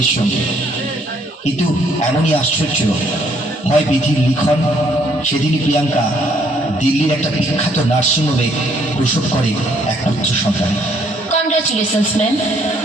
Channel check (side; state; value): both; normal; correlation 0.66